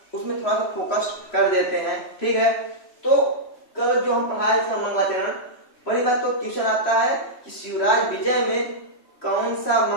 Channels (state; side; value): late; right; 3.1 ms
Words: उसमें थोड़ा सा फोकस कर देते हैं, ठीक है। तो कल जो हम पढ़ाए थे मंगलाचरण, पहली बात तो क्वेश्चन आता है कि शिवराज विजय में कौन सा